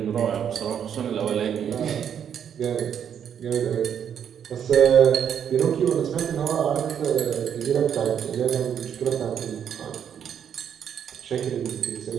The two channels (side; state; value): left; quieter; 8.6 dB